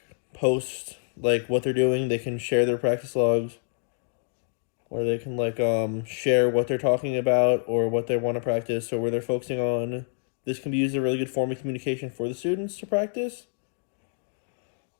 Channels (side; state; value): right; silent; digital silence